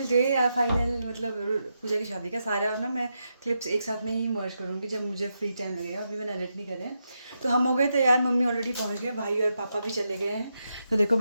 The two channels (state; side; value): inverted; both; correlation -0.85